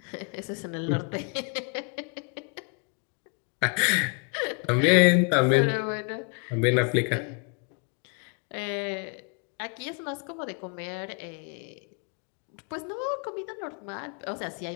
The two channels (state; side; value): quieter; right; 37.9 dB